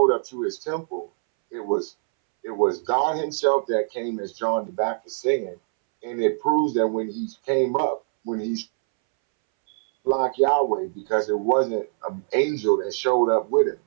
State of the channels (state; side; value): silent; left; 63 dB below the other